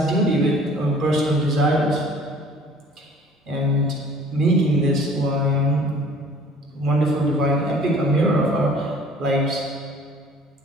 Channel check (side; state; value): both; normal; correlation 0.51